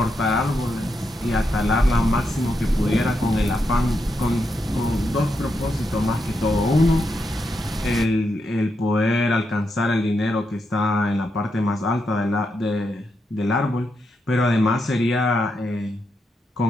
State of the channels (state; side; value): normal; both; correlation 0.83